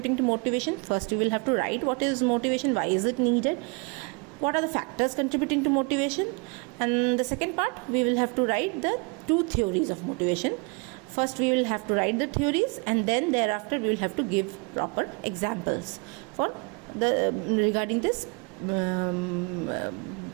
to motivation. First, we will have to write what is motivation, why is it needed, what are the factors contributing to motivation, and the second part we will have to write the two theories of motivation. first we will have to write the theories, and then thereafter we will have to give proper examples for the regarding this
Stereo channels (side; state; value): left; quieter; 32.3 dB